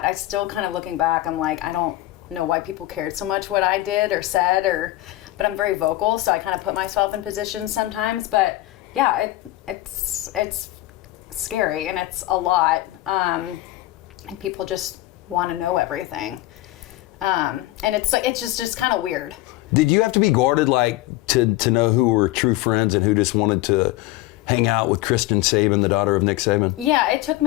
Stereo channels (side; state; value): right; quieter; 17.0 dB